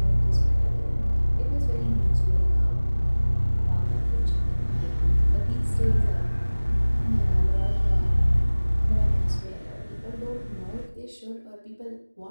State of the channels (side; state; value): both; inverted; correlation -1.00